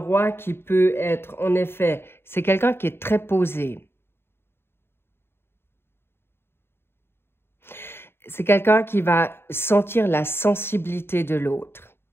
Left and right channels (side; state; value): right; late; 0.11 ms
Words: qui peut être, en effet, c'est quelqu'un qui est très posé. C'est quelqu'un qui va sentir la sensibilité de l'autre.